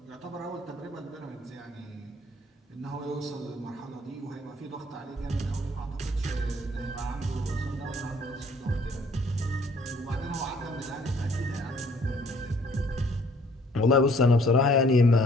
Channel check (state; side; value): normal; both; correlation 0.60